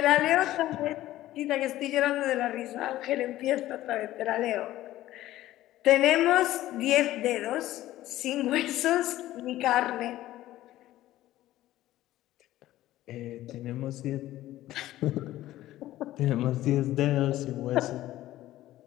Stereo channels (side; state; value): right; quieter; 14.9 dB